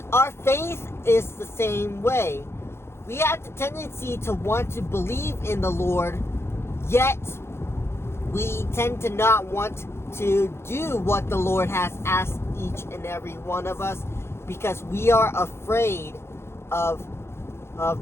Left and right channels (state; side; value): late; right; 0.12 ms